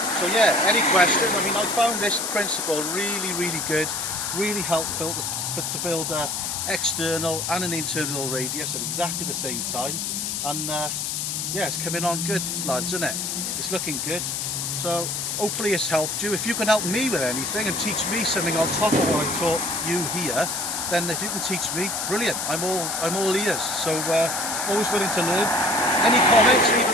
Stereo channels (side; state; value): left; noise; hiss, 2 dB below the sound